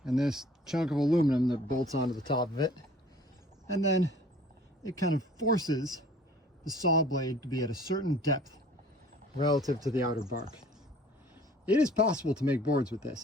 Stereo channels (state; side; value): normal; both; correlation 0.51